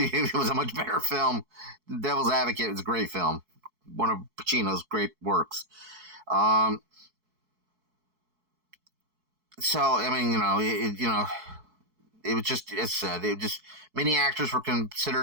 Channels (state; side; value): late; left; 4.6 ms